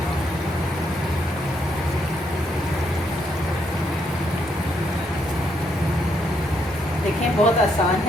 देखें, बहुत आसान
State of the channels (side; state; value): both; normal; correlation 0.75